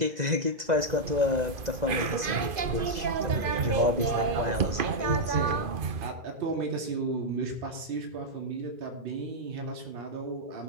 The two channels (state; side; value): late; left; 2.5 ms